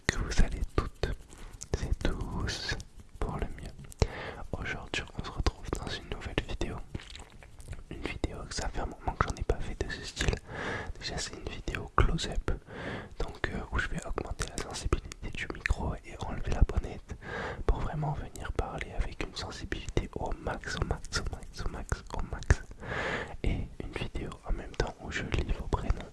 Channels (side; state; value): both; identical; correlation 1.00